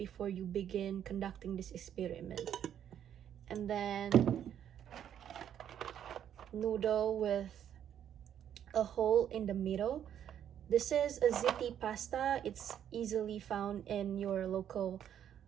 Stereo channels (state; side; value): quieter; left; 9.7 dB